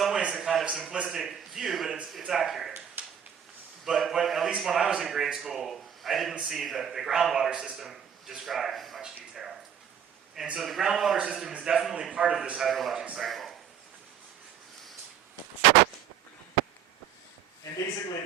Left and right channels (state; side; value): quieter; left; 8.6 dB